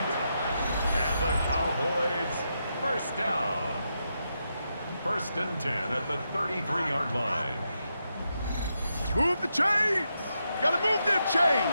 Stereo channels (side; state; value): both; inverted; correlation -0.84